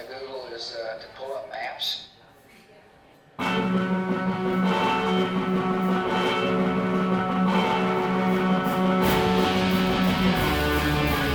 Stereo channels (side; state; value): both; identical; correlation 1.00